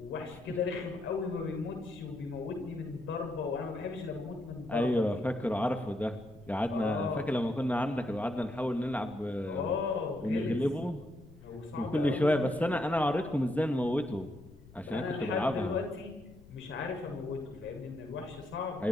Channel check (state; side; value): noise; left; rumble, 21 dB below the sound